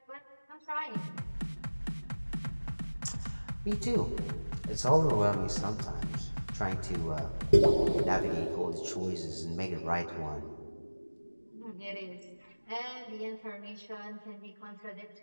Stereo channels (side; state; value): both; inverted; correlation -1.00